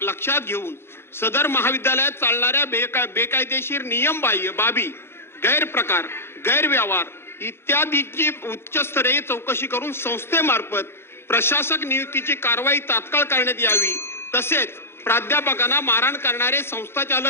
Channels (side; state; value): right; late; 0.12 ms